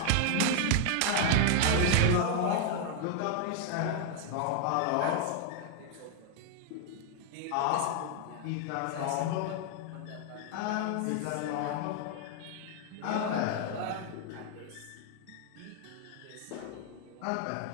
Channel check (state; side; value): different; both; correlation 0.00